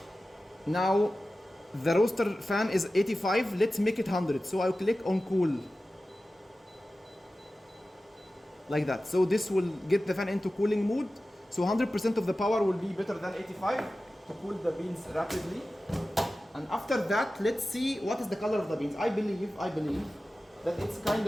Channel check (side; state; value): both; normal; correlation 0.95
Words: now the roaster fan is 85. Let's make it 100. So I'll click on cool. Like that. So this will get the fan into cooling mode. So 100% of the power will be better than 85 to cool the beans rapidly. And after that, let's see what is the color of the beans. I believe that it's kind